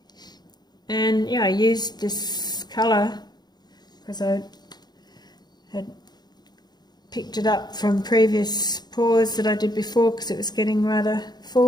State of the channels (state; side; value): late; right; 0.20 ms